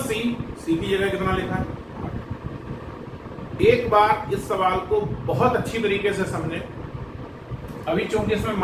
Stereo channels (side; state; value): both; identical; correlation 1.00